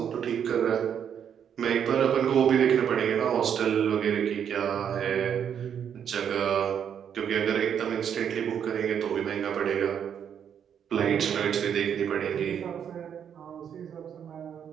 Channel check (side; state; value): left; quieter; 8.4 dB